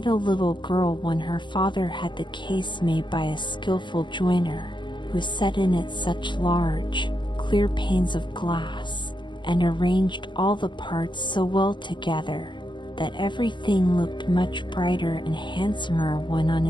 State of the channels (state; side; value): late; right; 0.23 ms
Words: a little girl when her father had the case made by a skillful joiner, who set in it such large, clear panes of glass, and arranged all the parts so well together, that everything looked much brighter and handsomer when on